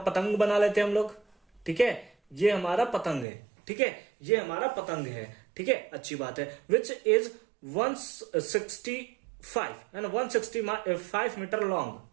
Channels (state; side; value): drops out; left; at 3.2 s